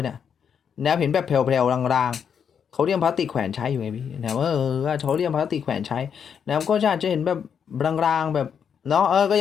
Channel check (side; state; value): right; quieter; 7.4 dB